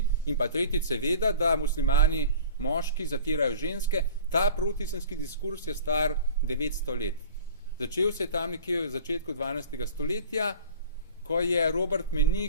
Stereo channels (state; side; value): inverted; both; correlation -0.42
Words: in pa tretjič seveda, da muslimani moški zatirajo ženske. Ta protiislamski diskurs je star 900 let. Začel se je tam nekje v začetku 12. stoletja, ko je Robert